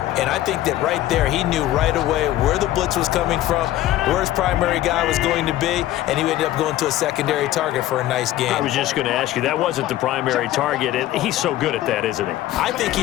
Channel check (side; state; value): right; quieter; 14.2 dB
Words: And I think that right there, he knew right away where the blitz was coming from, where his primary guy was going to be, and he ended up going to a secondary target for a nice game. I was just going to ask you, that wasn't the primary target. He's so good at that, isn't he? I think